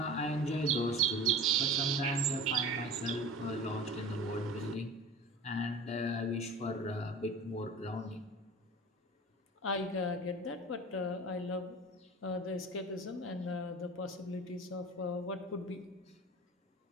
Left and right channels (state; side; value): normal; both; correlation 0.37